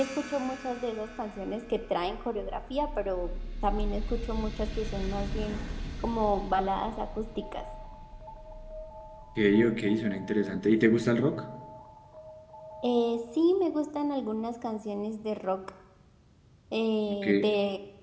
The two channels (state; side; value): identical; both; correlation 1.00